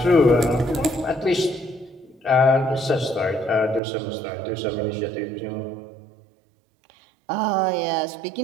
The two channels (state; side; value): drops out; left; at 3.8 s